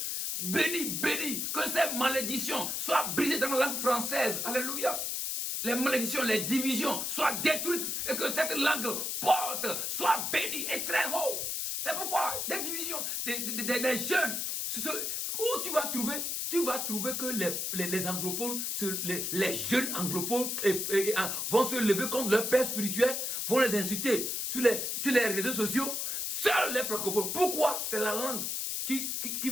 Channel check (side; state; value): left; noise; hiss, 1 dB below the sound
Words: bénis, que ces malédictions soient brisées dans la langue française. Alléluia. Les malédictions, les divisions soient détruites et que cette langue porte, soit bénie et très haut. C'est pourquoi des divisions, des jeunes, où tu vas trouver que les anglophones, les jeunes anglophones vont se lever contre leur père spirituel, vont les insulter sur les réseaux sociaux, seuls les francophones. Pourquoi? C'est la langue qui